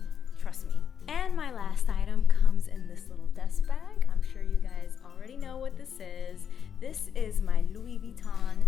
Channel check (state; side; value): quieter; right; 8.0 dB